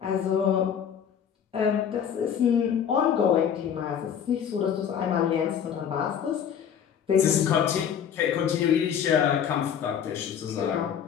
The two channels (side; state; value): right; quieter; 8.3 dB